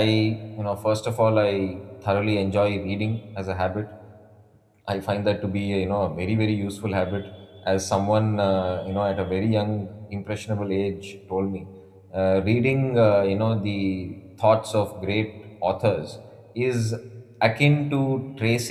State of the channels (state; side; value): identical; both; correlation 1.00